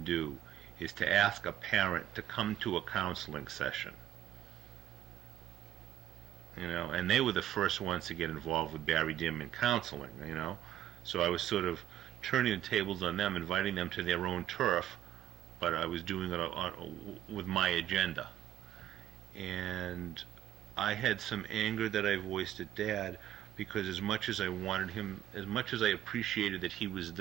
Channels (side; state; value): left; quieter; 11.5 dB